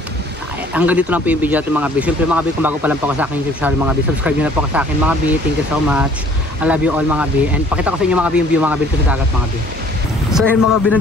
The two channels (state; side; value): normal; both; correlation 0.55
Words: hanggang dito lang po yung video natin mga B. Siyempre mga B, kung bago pa lang po ako sa akin YouTube channel mga B, subscribe nyo na po ako sa akin mga B. Thank you so much. I love you all mga B. And pakita ko sa inyo mga B yung view mga B dito sa dagat mga B. So ayun mga B,